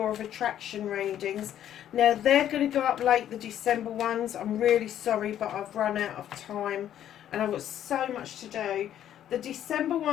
of attraction readings. Now they're going to go up late, the December ones. I'm really sorry, but I've run out of time and I've got so much to do. The December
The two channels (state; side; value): quieter; right; 10.9 dB